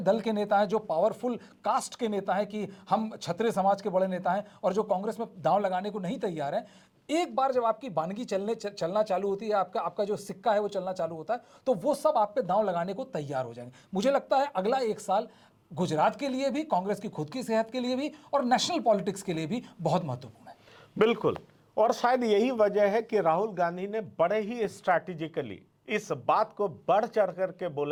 दल के नेता हैं, जो पावरफुल कास्ट के नेता हैं कि हम क्षत्रिय समाज के बड़े नेता हैं और जो कांग्रेस में दांव लगाने को नहीं तैयार हैं, एक बार जब आपकी बानगी चलना चालू होती है, आपका जो सिक्का है वो चलना चालू होता है, तो वो सब आप पे दांव लगाने को तैयार हो जाएंगे। मुझे लगता है अगला 1 साल गुजरात के लिए भी, कांग्रेस की खुद की सेहत के लिए भी और नेशनल पॉलिटिक्स के लिए भी बहुत महत्वपूर्ण है। बिल्कुल, और शायद यही वजह है कि राहुल गांधी ने बड़े ही स्ट्रैटेजिकली इस बात को बढ़ चढ़ करके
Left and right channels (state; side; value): identical; both; correlation 1.00